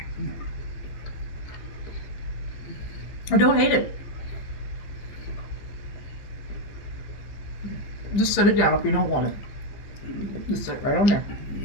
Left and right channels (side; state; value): right; late; 15 ms